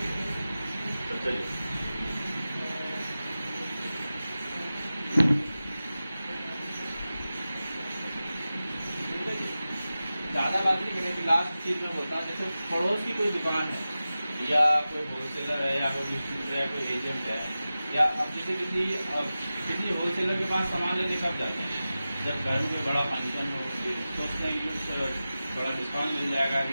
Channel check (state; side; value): inverted; both; correlation -0.95